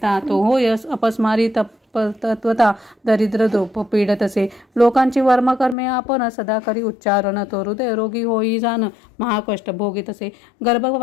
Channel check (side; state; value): right; drops out; at 5.8 s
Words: तो होय अपस्मारी तत्वता दरिद्र द्रोप पीडत असे लोकांची वर्मकर्मे आपण सदा करी उच्चारण तो हृदय रोगी होई जाण महाकष्ट भोगीत असे